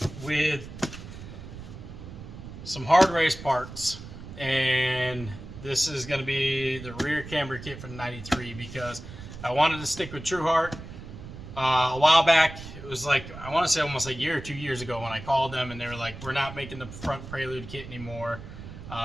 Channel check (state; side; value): noise; right; rumble, 13 dB below the sound